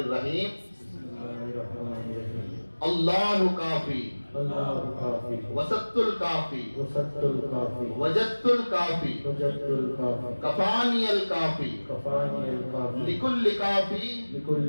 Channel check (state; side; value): inverted; both; correlation -1.00